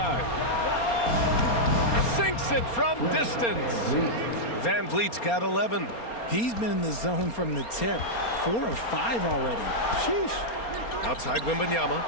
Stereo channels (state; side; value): late; right; 4.3 ms